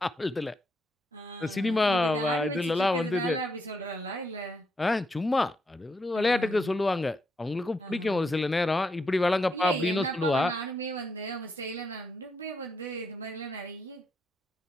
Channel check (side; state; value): both; normal; correlation 0.79